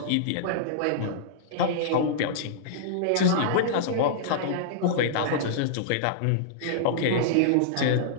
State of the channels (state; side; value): different; both; correlation -0.02